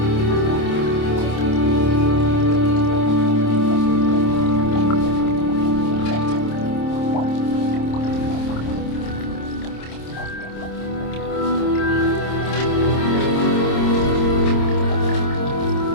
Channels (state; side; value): late; right; 26 ms